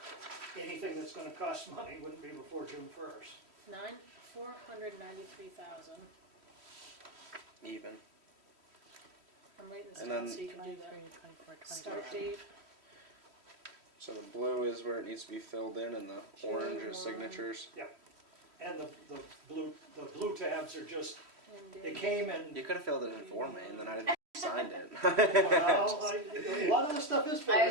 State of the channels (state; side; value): late; left; 3.1 ms